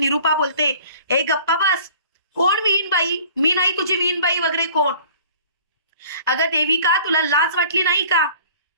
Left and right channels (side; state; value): both; inverted; correlation -0.49